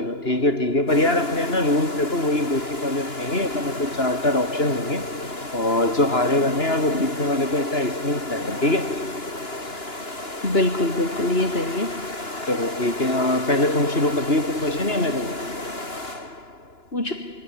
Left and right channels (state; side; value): late; right; 2.9 ms